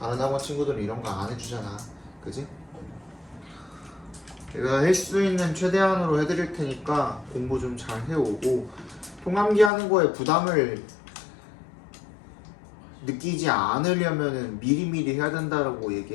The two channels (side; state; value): right; drops out; at 9.7 s